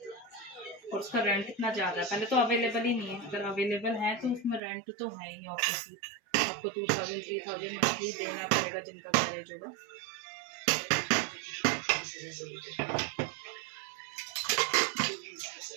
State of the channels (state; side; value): drops out; left; at 4.6 s